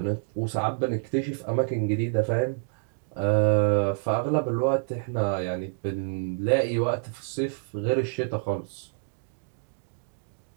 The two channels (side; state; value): left; silent; digital silence